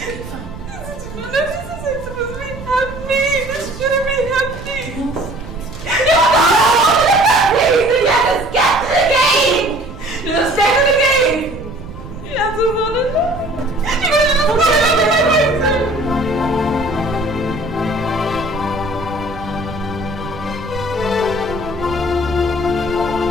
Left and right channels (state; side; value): noise; right; rumble, 13 dB below the sound